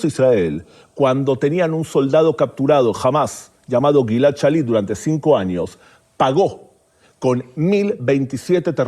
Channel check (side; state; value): both; identical; correlation 1.00